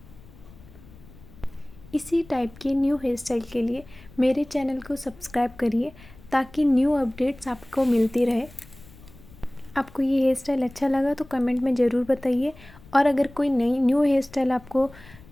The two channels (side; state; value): left; noise; rumble, 22 dB below the sound